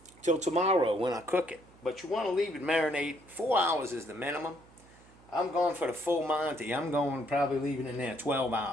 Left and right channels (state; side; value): noise; right; hum, 26 dB below the sound